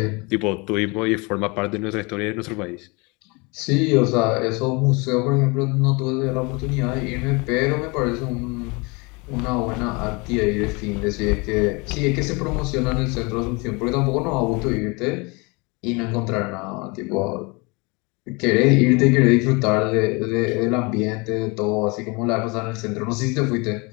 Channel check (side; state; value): right; quieter; 28.2 dB